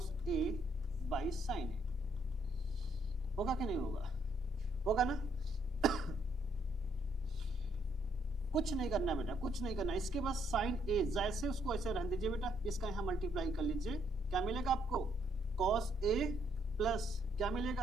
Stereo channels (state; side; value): noise; right; hum, 24 dB below the sound